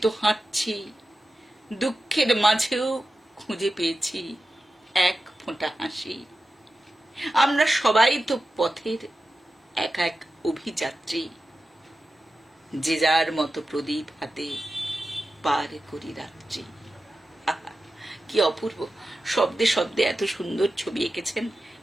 তো হাঁটছি। দুঃখের মাঝেও খুঁজে পেয়েছি এক ফোঁটা হাসি। আমরা সবাই তো পথের এক এক অভিযাত্রী, যে যার মতো প্রদীপ হাতে পার করি রাত্রি। আহা, কি অপূর্ব! শব্দে শব্দে এত সুন্দর ছবি এঁকেছেন।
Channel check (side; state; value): both; normal; correlation 0.92